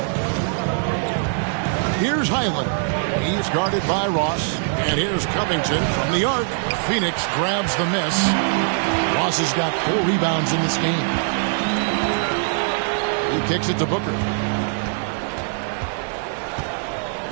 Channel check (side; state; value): left; silent; 64 dB below the other